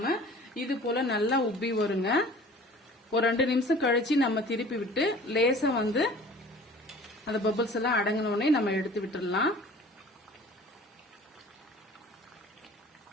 இது போல நல்லா உப்பி வருங்க. ஒரு 2 நிமிஷம் கழிச்சு நம்ம திருப்பி விட்டு லேசா அந்த பபிள்ஸ் எல்லாம் அடங்கினோடனே நம்ம எடுத்து விட்டுடலாம்.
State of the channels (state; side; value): normal; both; correlation 0.46